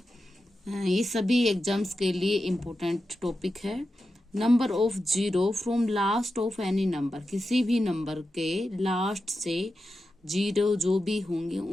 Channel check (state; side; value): normal; both; correlation 0.90